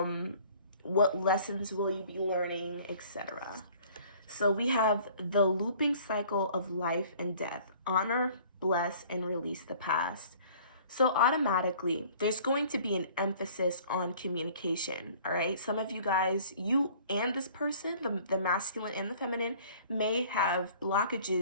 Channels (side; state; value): both; inverted; correlation -0.52